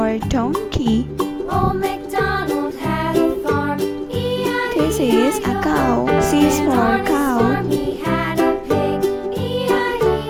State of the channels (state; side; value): identical; both; correlation 1.00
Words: donkey. This is a cow. C is for cow.